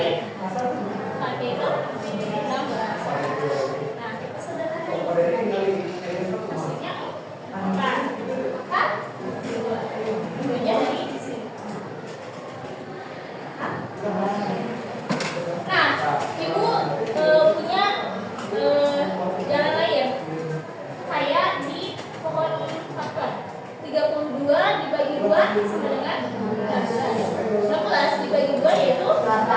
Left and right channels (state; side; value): identical; both; correlation 1.00